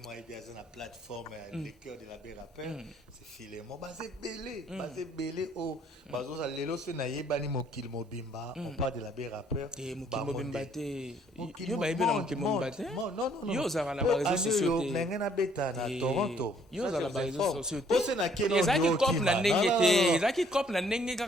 m'a bien la plateforme les cœurs de l'abbé rappeur, c'est Philémon basé belé au bazo ça lelo se na yebani mokil mobimba, on parle de l'abbé rappeur et mokil mobimba te yo ba yebela mokil mobimba te non yo za na ba réseaux sociaux te ngena beta na Toronto yo za na ba réseaux sociaux te pose na keno ezaki cop na ndenge te ezaki cop na ndenge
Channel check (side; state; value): both; normal; correlation 0.63